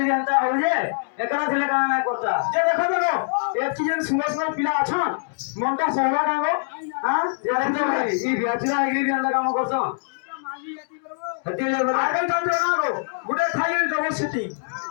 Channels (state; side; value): silent; right; digital silence